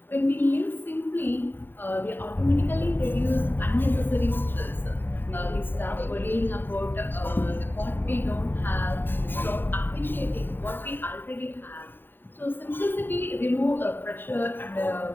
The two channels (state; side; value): late; right; 0.095 ms